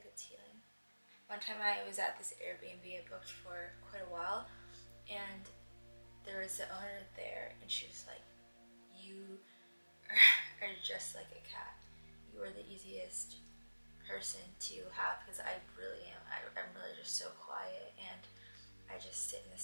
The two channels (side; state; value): both; inverted; correlation -1.00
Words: it's healing. One time I was at this Airbnb I booked for quite a while, and there was the owner there, and she was like, you are just like a cat. You are the easiest person to have, because I really am. I'm really just so quiet, and I just sit in the